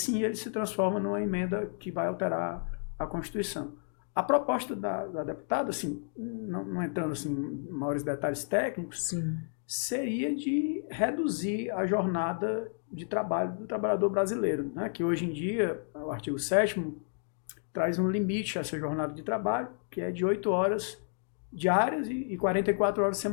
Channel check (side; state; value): right; silent; 57 dB below the other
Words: ele se transforma numa emenda que vai alterar a Constituição. A proposta da deputada, assim, não entrando assim, em maiores detalhes técnicos, sim. Seria de reduzir a jornada de trabalho do trabalhador brasileiro, né? Que hoje em dia, o artigo 7º traz um limite a essa jornada de trabalho, que é de 8 horas diárias e 44 horas